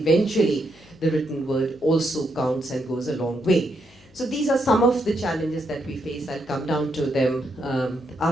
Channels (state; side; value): noise; left; hum, 27 dB below the sound